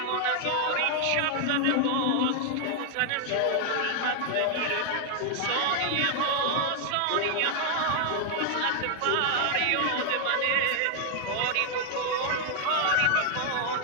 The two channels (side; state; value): both; different; correlation 0.00